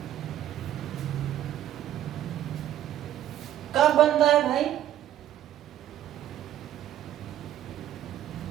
कब बनता है भाई?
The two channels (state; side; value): quieter; left; 11.9 dB